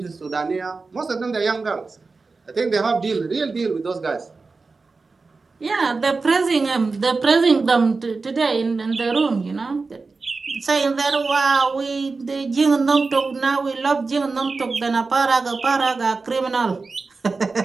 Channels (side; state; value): left; quieter; 4.1 dB